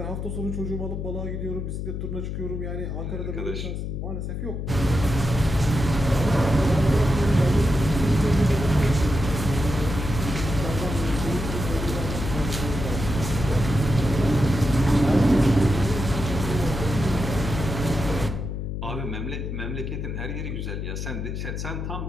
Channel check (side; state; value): left; noise; hum, 4 dB below the sound